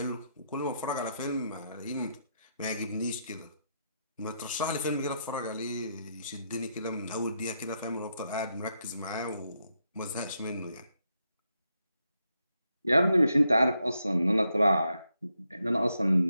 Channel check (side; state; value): both; inverted; correlation -0.81